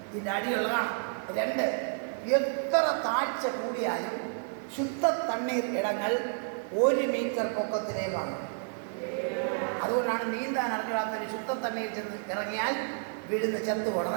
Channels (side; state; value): left; silent; digital silence